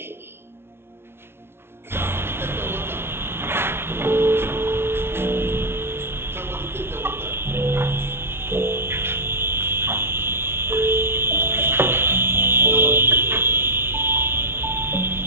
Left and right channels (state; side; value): late; left; 0.12 ms